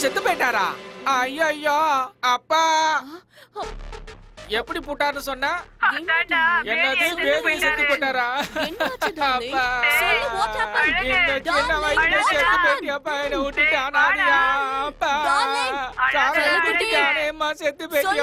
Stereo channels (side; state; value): both; identical; correlation 1.00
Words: செத்து போயிட்டாரா? ஐயோ அப்பா எப்படி போட்டாருன்னு சொன்னா? என்னது பேபி செத்து போட்டாரா? அப்பா சொல்லு, what happened? இந்த சின்ன வயசுல செத்து போயிட்டியாப்பா, என்ன விட்டுட்டு அனாதையா? அப்பா சாராயம் குடிக்கானேம்மா செத்து